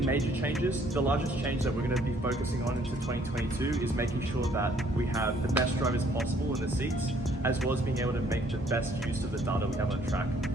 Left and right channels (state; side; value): normal; both; correlation 0.63